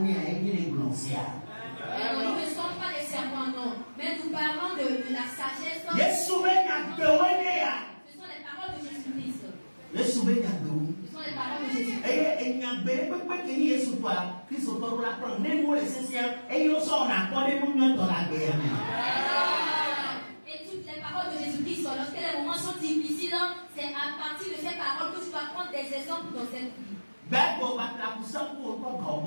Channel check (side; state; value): both; inverted; correlation -1.00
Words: à les blanchières. Nous ne sommes pas des serpents, non. Mais nous parlons de la sagesse. Ce sont les paroles de Jésus-Christ. Le souvenir de nous. Ce sont les paroles de Jésus-Christ. Et il n'y a pas de qui est sous toi. Christ autour de la prendre. Même moi, l'essentiel. Et ils sont en accord et nous dans la guerre. Et toutes les paroles de Jésus-Christ, lorsque les moments sont difficiles, c'est à partir de ces paroles que tu vas prendre des exemples dans cette vie. Quand